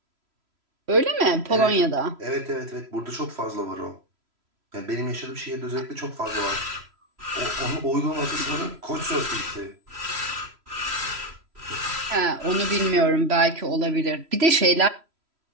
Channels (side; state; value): left; late; 3.0 ms